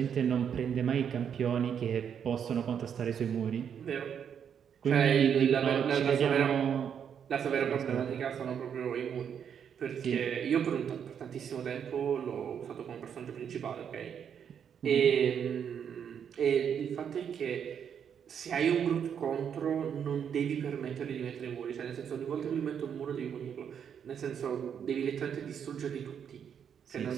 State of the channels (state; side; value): quieter; left; 8.0 dB